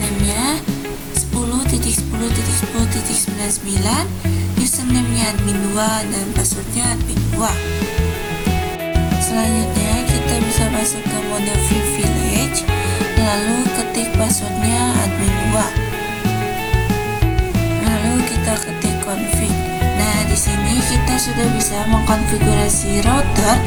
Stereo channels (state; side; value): identical; both; correlation 1.00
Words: 10.10.10.99, username-nya admin 2 dan passwordnya admin 2. Selanjutnya kita bisa masuk ke mode privilege, lalu ketik passwordnya admin 2. Lalu kita ketik config. Nah, di sini kita sudah bisa mengkonfigurasi router